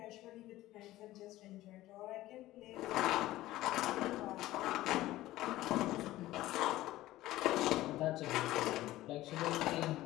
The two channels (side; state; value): right; quieter; 16.1 dB